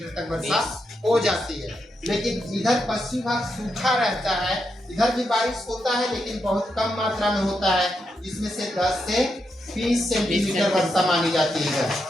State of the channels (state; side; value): normal; both; correlation 0.83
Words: तक वर्षा हो जाती है। लेकिन इधर पश्चिम भाग सूखा रहता है, इधर भी बारिश होता है लेकिन बहुत कम मात्रा में होता है, जिसमें से 10 से 20 सेंटीमीटर वर्षा मानी जाती है,